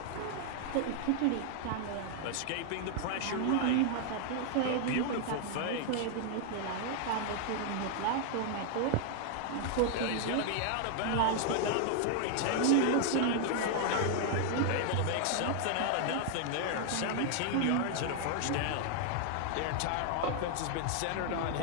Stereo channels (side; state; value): both; different; correlation 0.00